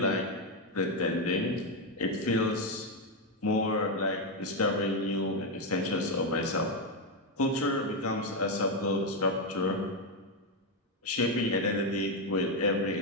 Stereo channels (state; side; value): normal; both; correlation 0.05